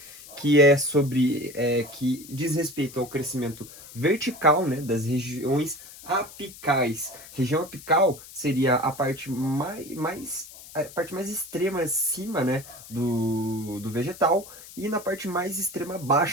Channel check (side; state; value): left; noise; hiss, 17 dB below the sound